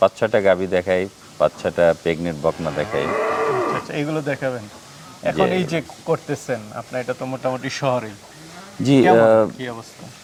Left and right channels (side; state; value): both; identical; correlation 1.00